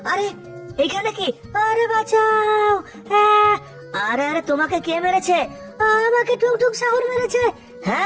আরে এইখানে কি? আরে বাঁচাও। আরে আরে তোমাকে কে মেরেছে? আমাকে টুং টুং সাহুর মেরেছে।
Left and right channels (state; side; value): identical; both; correlation 1.00